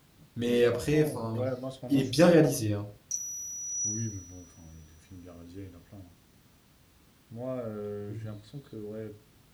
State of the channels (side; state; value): both; identical; correlation 1.00